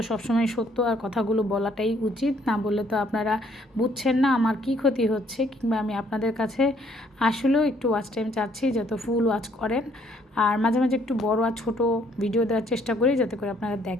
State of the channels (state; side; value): normal; both; correlation 0.65